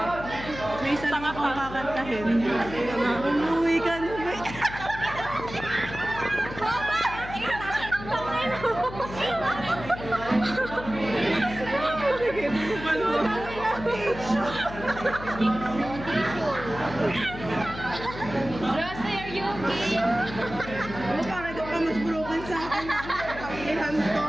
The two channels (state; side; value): noise; left; hum, 12 dB below the sound